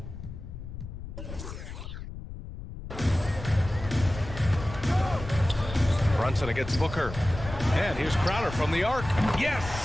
Brunson against Booker. And here's Crowder from the arc.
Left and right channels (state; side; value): noise; left; rumble, 10 dB below the sound